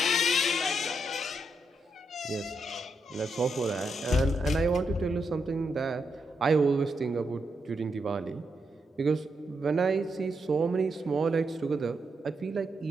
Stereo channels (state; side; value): normal; both; correlation 0.82